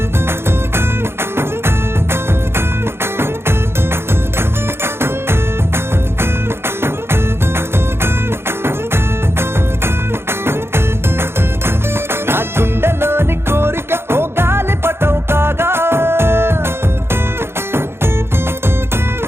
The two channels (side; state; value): left; late; 0.12 ms